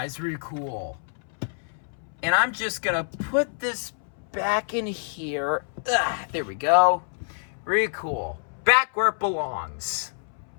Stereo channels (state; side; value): silent; right; 60 dB below the other